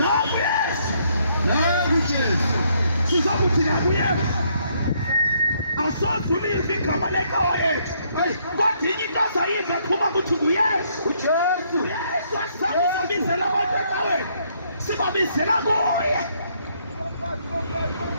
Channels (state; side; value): inverted; both; correlation -0.70